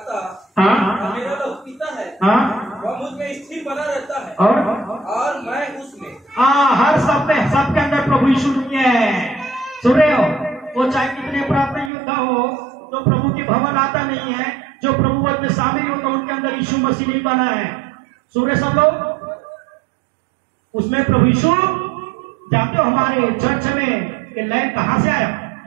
हाँ, मेरा लहू पीता है, हाँ, वह मुझ में स्थिर बना रहता है, और मैं उसमें। हाँ, हर सब में, सबके अंदर प्रभु यीशु है। सुन रहे हो? वो चाहे कितने प्राप्त योद्धा हो, जो प्रभु के भवन आता नहीं है, जो प्रभु वध में शामिल होता, उनके अंदर यीशु मसीह नहीं बना है। सुन रहे सब लोग? उसमें प्रभु यीशु, जानते हो हमारे चर्च में ये लाइन कहां से आया?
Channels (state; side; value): drops out; left; at 11.9 s